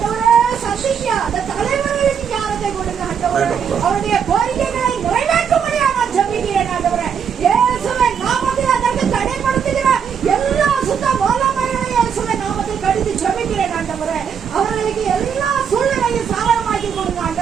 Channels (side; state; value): left; quieter; 7.3 dB